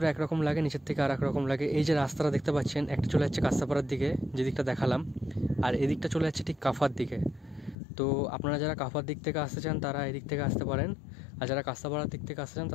একরকম লাগে, নিচের থেকে আর একরকম লাগে। এই যে রাস্তাটা দেখতে পাচ্ছেন, একটা চলে যাচ্ছে কাস্তাপাড়ার দিকে যেদিকটা দেখালাম, আর এদিকটা চলে যাচ্ছে ঠিক কাফার দিকে। তো আপনারা যারা কাফার দিক থেকে আসতে চান তারা এদিক থেকে আসতে পারেন, আর যারা কাস্তাপাড়ার দিক থেকে আসতে চান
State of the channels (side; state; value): right; drops out; at 7.8 s